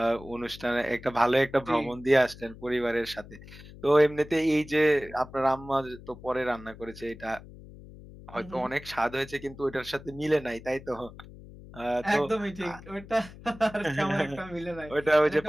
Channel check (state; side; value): noise; left; hum, 17 dB below the sound